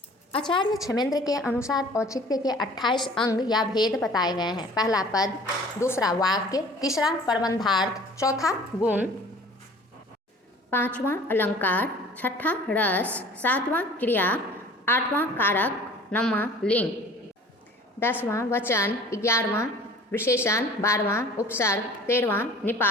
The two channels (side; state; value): both; normal; correlation 0.47